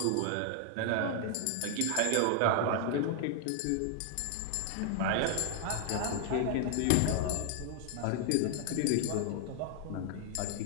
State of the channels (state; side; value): different; both; correlation 0.00